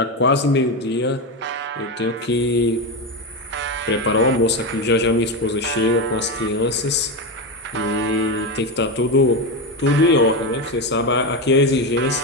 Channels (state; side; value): normal; both; correlation 0.14